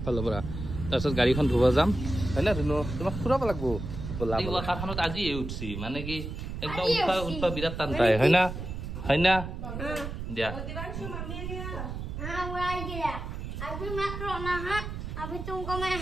পৰা তাৰপিছত গাড়ীখন ধুব যাম হয় না ধুনু তোমাক ফুৰাব লাগিব ব'লা ৱাকাৰখনত আজি উঠছি মানে কি একদম উঠা বিৰাট টান পায় হয় না দিয়া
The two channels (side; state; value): right; noise; rumble, 6 dB below the sound